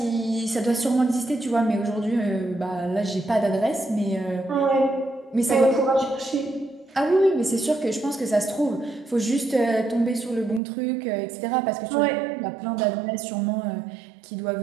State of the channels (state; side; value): drops out; left; at 10.6 s